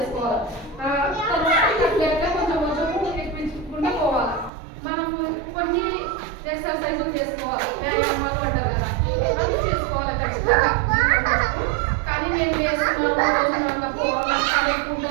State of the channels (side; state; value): left; drops out; at 4.5 s